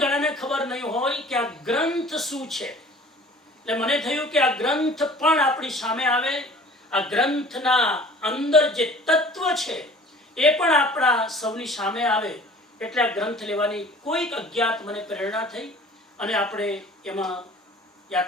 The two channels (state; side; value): normal; both; correlation 0.47